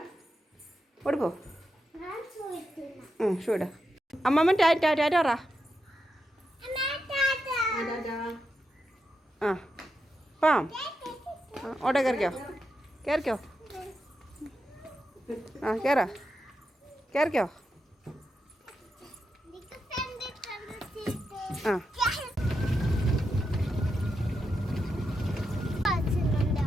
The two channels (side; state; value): both; normal; correlation 0.86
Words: ഓടിപ്പോ. ഷൂ ഇടാ. അമ്മമ്മ ടാറ്റാറാ. ആ പാം. ഓട്ടോ കയറിക്കോ. ആ കയറിക്കോ. ആ